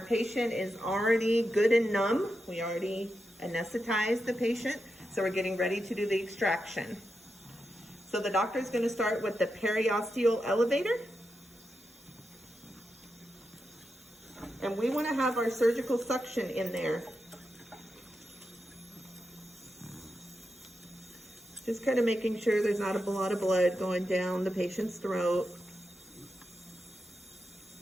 is already good and numb. We already anesthetized the patient, so we're getting ready to do the extraction. So the doctor's gonna start with the periosteal elevator. And we wanna have our surgical suction in there. Just kind of making sure there's not a lot of blood going down the patient's throat.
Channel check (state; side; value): normal; both; correlation 0.87